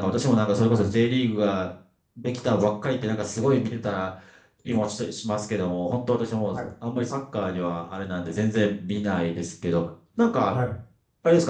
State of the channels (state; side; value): identical; both; correlation 1.00